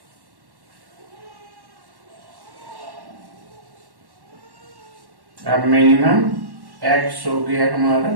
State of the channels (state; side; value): late; left; 1.1 ms